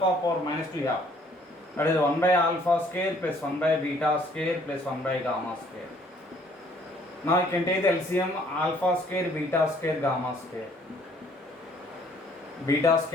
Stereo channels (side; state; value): both; normal; correlation 0.61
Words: minus 2 yeah. That is 1 by alpha square plus 1 by beta square plus 1 by gamma square. Now you can take the LCM alpha square, beta square, gamma square. Beta